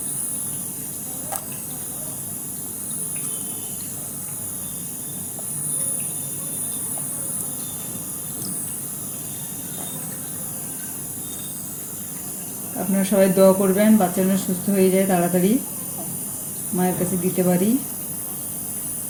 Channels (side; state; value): both; identical; correlation 1.00